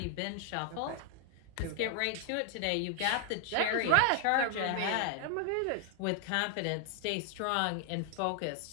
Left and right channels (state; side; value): different; both; correlation 0.00